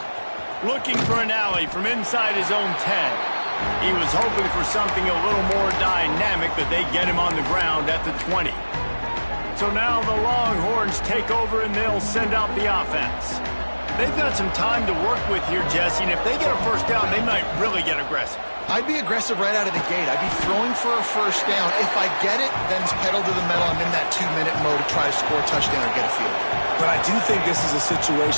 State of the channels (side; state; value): both; inverted; correlation -1.00